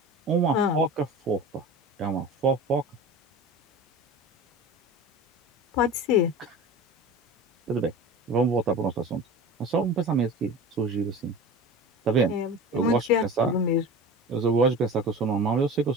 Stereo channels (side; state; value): both; normal; correlation 0.34